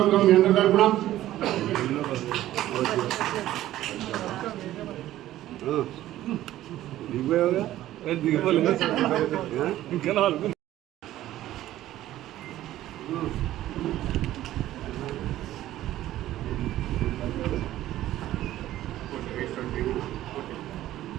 మీ అందరి తరఫున.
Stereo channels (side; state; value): left; quieter; 14.0 dB